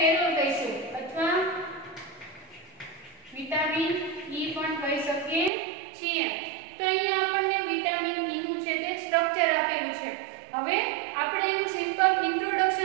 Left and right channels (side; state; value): left; drops out; at 5.5 s